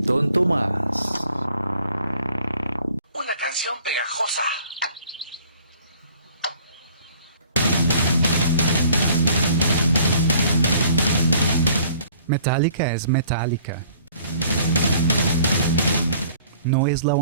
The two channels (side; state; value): both; inverted; correlation -0.55